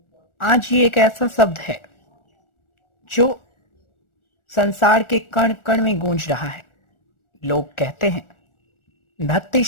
आज ये एक ऐसा शब्द है जो संसार के कण कण में गूंज रहा है। लोग कहते हैं भक्ति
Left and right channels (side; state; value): right; late; 1.4 ms